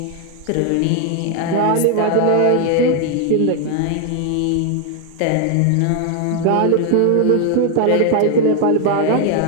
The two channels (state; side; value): different; both; correlation 0.00